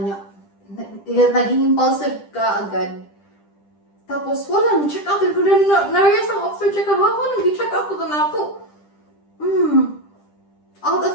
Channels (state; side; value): late; right; 10 ms